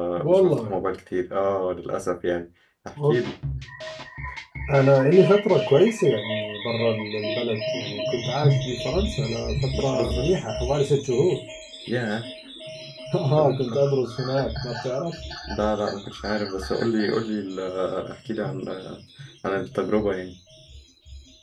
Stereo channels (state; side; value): identical; both; correlation 1.00